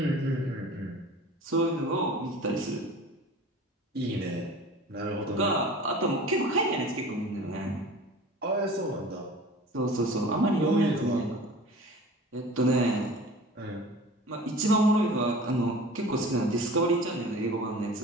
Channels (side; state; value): both; normal; correlation 0.41